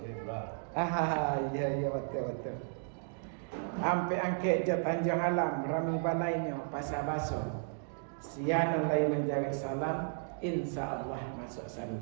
iya betul. Ampe angke je Tanjung Alam rami balainya pasar baso. Siana lai menjawab salam insyaallah masuk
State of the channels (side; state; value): left; silent; digital silence